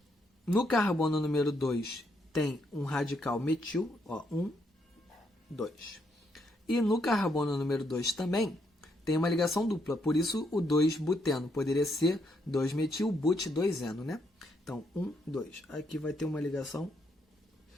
No carbono número 2, tem um radical metil, ó, 1, 2. E no carbono número 2 também tem uma ligação dupla, por isso o 2-buteno poderia ser 2-metil, but-2-eno, né? Então, 1, 2. Aqui vai ter uma ligação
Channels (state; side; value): normal; both; correlation 0.76